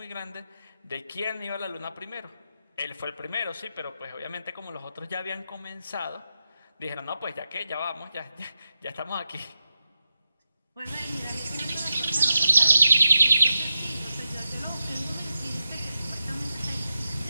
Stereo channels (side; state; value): both; inverted; correlation -0.86